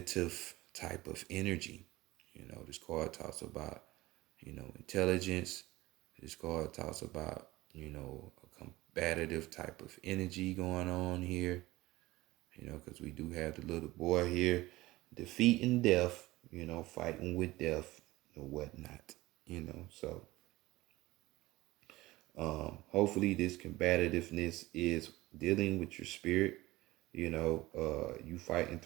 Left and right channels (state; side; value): quieter; left; 18.7 dB